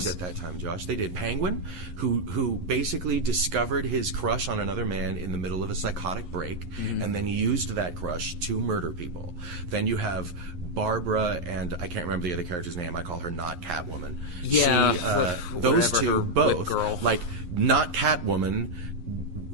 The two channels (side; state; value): left; late; 11 ms